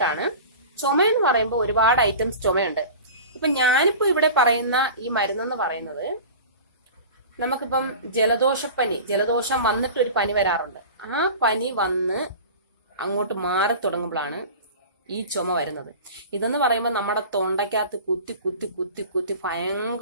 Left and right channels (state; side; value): inverted; both; correlation -0.36